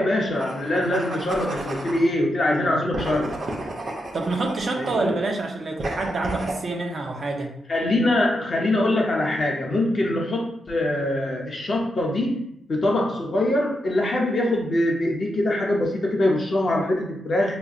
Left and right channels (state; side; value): normal; both; correlation 0.84